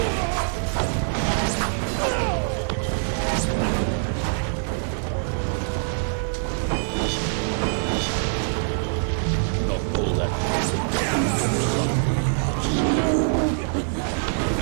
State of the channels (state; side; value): silent; left; 62 dB below the other